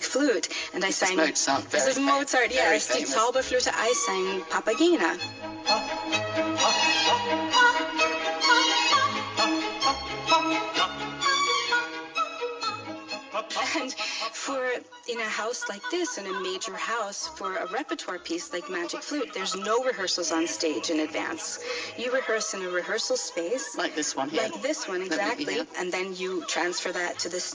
Flute. And I sang... Mozart, This is Mozart, yes. Die Zauberflöte, I sang Papagena. And in a house like this, in a major house, for a repertoire piece like Magic Flute, there's no rehearsals on stage in advance. You rehearse in a rehearsal space. Like this one here. Like this one, exactly. And then you transfer that to the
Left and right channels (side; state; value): both; identical; correlation 1.00